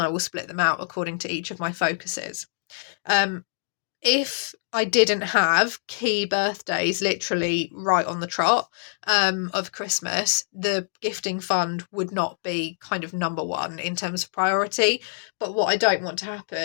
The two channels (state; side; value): silent; right; digital silence